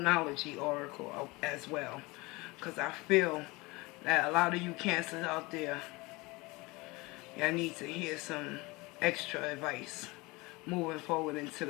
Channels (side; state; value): right; quieter; 23.7 dB